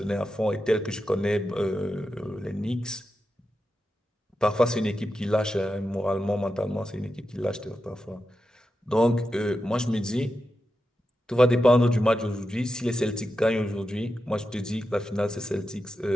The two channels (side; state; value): both; normal; correlation 0.89